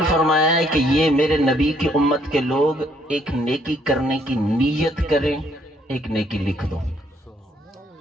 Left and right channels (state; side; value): normal; both; correlation 0.68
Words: فرمایا ہے کہ یہ میرے نبی کی امت کے لوگ ایک نیکی کرنے کی نیت کریں، ایک نیکی لکھ دو،